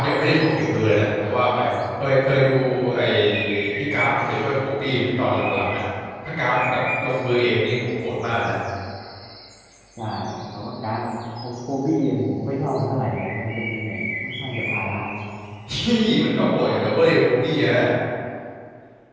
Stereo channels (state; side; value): identical; both; correlation 1.00